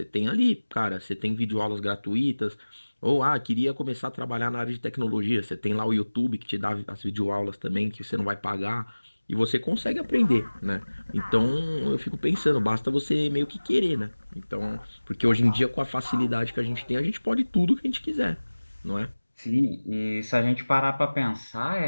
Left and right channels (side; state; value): both; inverted; correlation -1.00